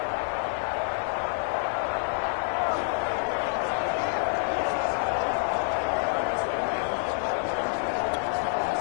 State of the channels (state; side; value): silent; right; digital silence